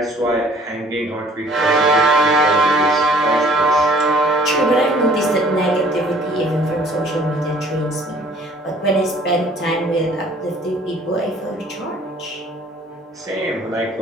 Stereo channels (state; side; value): normal; both; correlation 0.55